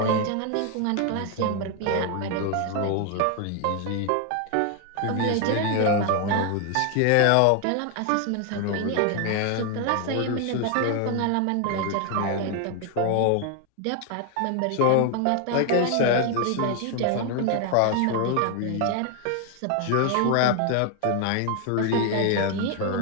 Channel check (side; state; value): both; different; correlation 0.00